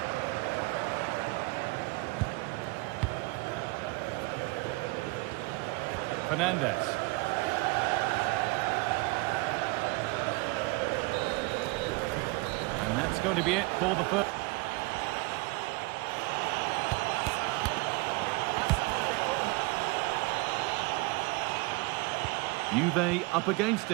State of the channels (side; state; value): left; quieter; 24.5 dB